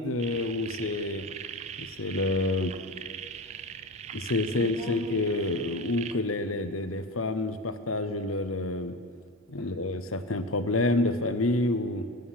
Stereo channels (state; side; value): normal; both; correlation 0.25